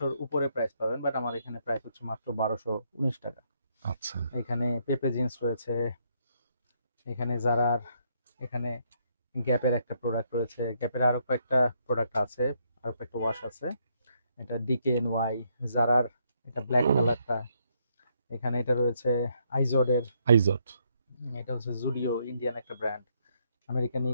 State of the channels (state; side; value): inverted; both; correlation -0.73